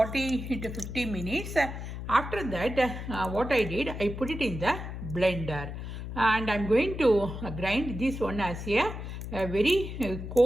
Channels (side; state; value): left; noise; hum, 7 dB below the sound